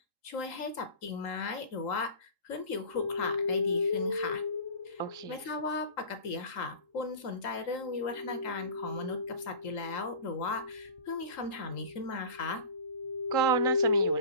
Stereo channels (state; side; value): late; right; 3.8 ms